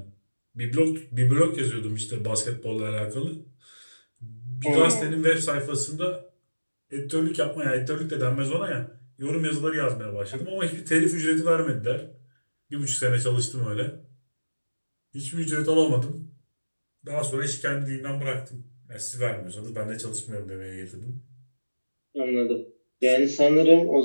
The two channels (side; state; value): both; inverted; correlation -1.00